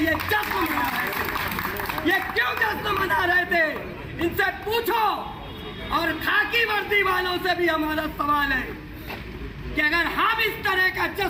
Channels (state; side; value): identical; both; correlation 1.00